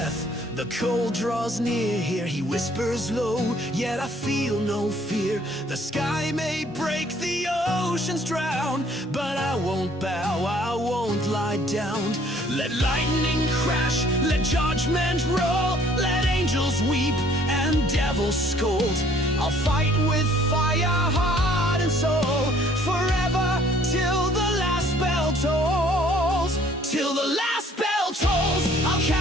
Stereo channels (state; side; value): normal; both; correlation 0.59